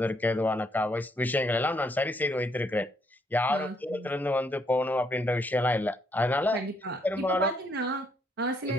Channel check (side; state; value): both; normal; correlation 0.72